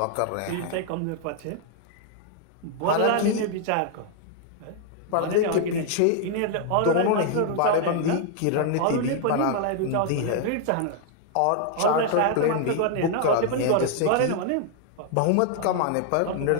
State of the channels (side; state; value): both; different; correlation 0.00